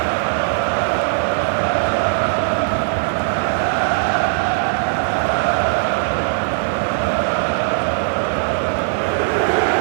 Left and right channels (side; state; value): left; silent; digital silence